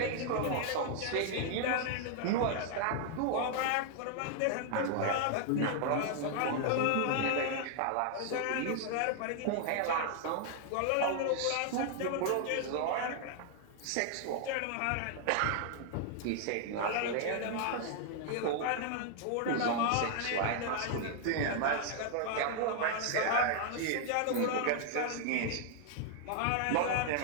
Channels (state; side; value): different; both; correlation 0.00